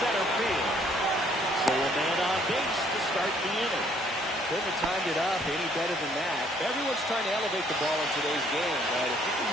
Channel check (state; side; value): normal; both; correlation 0.63